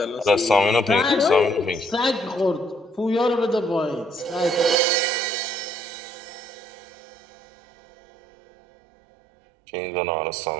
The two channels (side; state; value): left; drops out; at 4.8 s